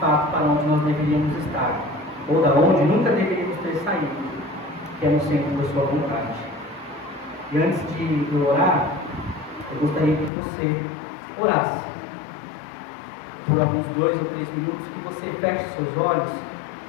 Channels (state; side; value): drops out; right; at 10.3 s